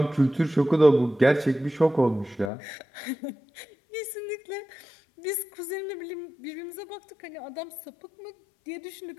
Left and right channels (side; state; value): right; drops out; at 2.5 s